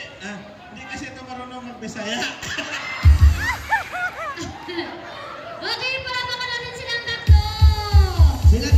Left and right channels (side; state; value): both; identical; correlation 1.00